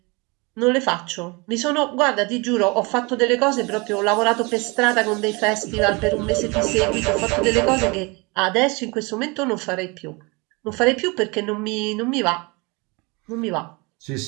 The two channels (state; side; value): quieter; left; 27.8 dB